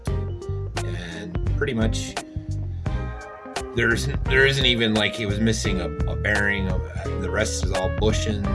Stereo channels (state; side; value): identical; both; correlation 1.00